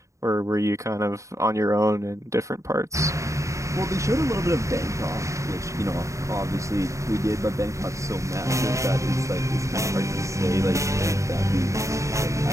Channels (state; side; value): late; left; 0.15 ms